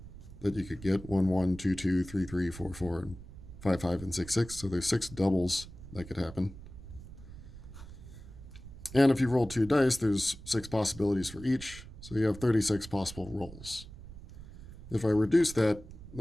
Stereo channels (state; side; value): noise; right; rumble, 15 dB below the sound